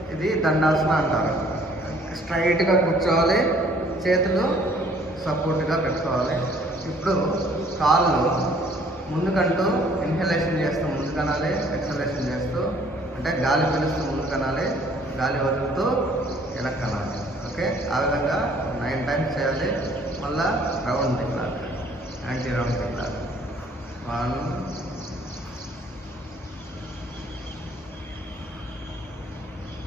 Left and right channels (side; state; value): both; normal; correlation 0.59